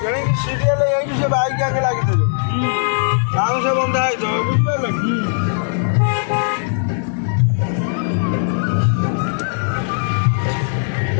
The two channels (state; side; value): silent; right; digital silence